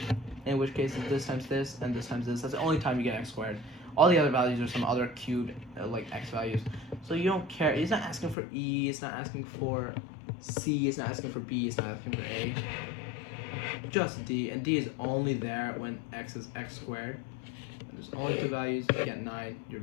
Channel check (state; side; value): drops out; right; at 8.3 s